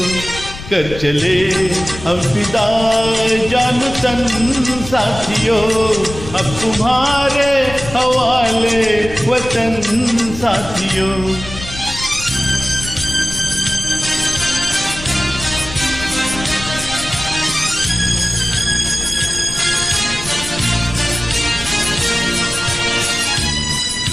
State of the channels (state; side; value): noise; left; rumble, 11 dB below the sound